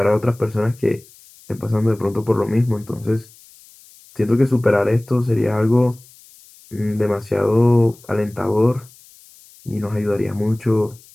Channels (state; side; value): noise; left; hiss, 25 dB below the sound